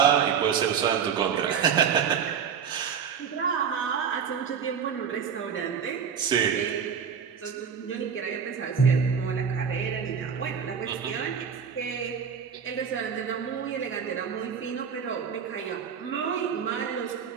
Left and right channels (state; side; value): quieter; left; 7.2 dB